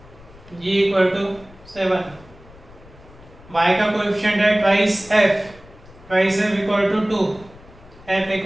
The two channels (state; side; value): noise; left; rumble, 23 dB below the sound